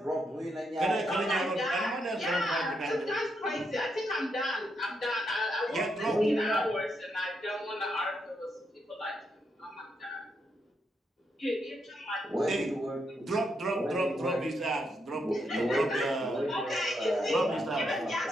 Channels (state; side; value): normal; both; correlation 0.80